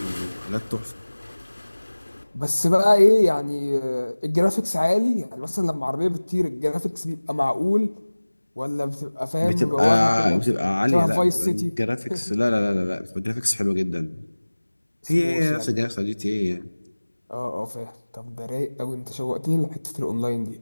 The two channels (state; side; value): inverted; both; correlation -1.00